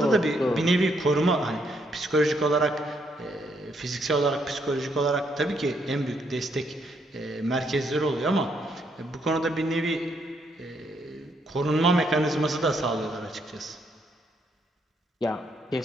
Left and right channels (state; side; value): normal; both; correlation 0.74